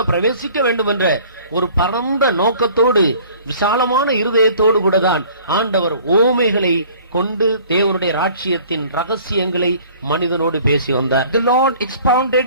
பிரவேசிக்க வேண்டும் என்ற ஒரு பரந்த நோக்கத்தோடு விசாலமான இருதயத்தோடு கூட தான் ஆண்டவர் ஓமைகளை கொண்டு தேவனுடைய ராஜ்யத்தின் ரகசியங்களை மனிதனோடு பேசி வந்தார். The Lord expounded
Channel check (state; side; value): inverted; both; correlation -0.51